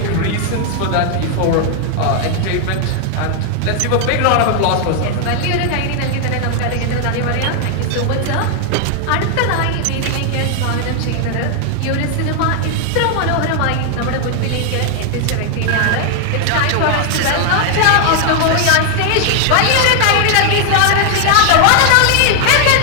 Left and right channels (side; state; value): both; different; correlation 0.00